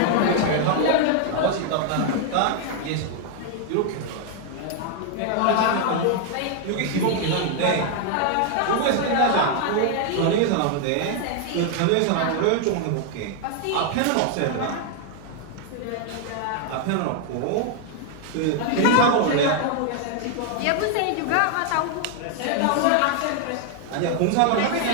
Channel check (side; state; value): both; different; correlation 0.00